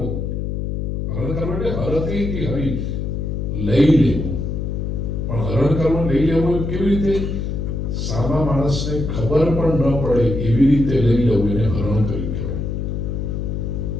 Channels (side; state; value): left; noise; hum, 2 dB below the sound